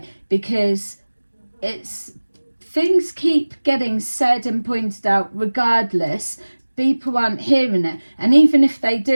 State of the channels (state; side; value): inverted; both; correlation -1.00